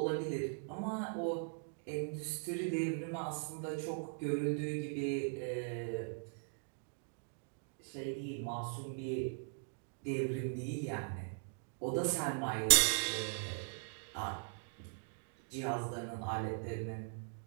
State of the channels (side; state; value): left; silent; digital silence